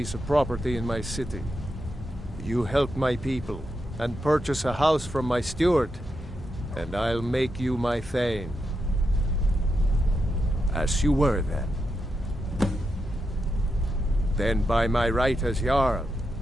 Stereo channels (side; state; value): both; normal; correlation 0.85